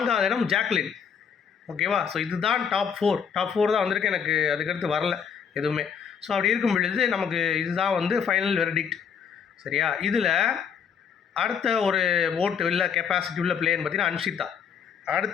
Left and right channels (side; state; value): right; quieter; 7.2 dB